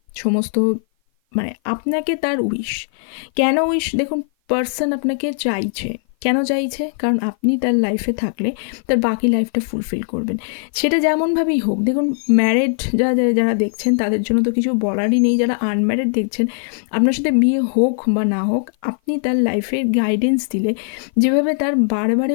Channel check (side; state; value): right; silent; 55 dB below the other